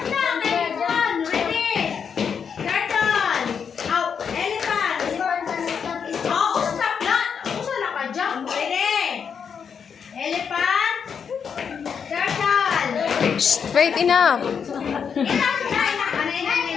na. Next one. Ready. Turtle. Oh, elephant. Oh, stop na. Usa na ka jump. Ready. Elephant. Turtle. Straight enough.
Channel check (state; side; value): quieter; right; 6.8 dB